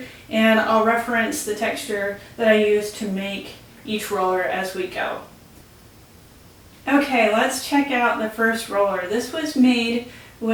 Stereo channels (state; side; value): identical; both; correlation 1.00